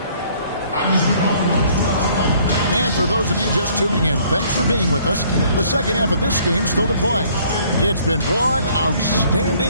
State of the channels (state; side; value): inverted; both; correlation -0.60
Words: And for those of you just tuning in, thanks for being with us. The second half of this game still to play. It's been one